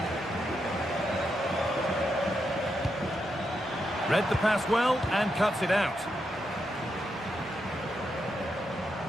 Read the pass well and cuts it out.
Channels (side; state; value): both; normal; correlation 0.83